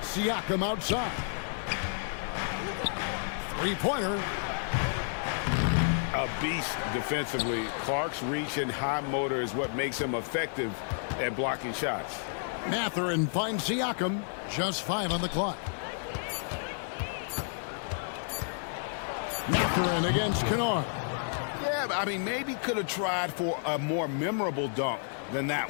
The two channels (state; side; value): silent; right; digital silence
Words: Siakam outside. 3-pointer. A beast defensively. Clark's reach and high motor is what makes him effective at blocking shots. Mathurin finds Siakam. Just 5 on the clock. Mathurin against Kennard. Yeah, I mean, maybe could have tried for a more memorable dunk than